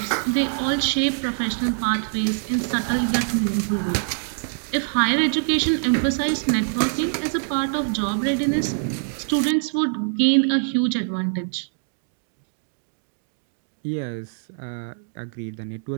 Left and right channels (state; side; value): silent; left; digital silence